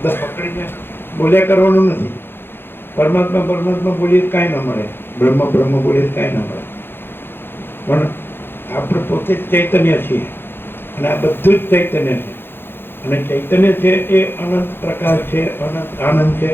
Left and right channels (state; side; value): late; right; 0.10 ms